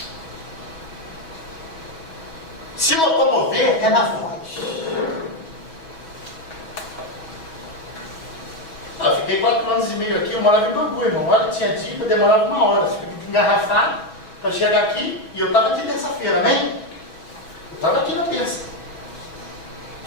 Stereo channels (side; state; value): right; late; 6.2 ms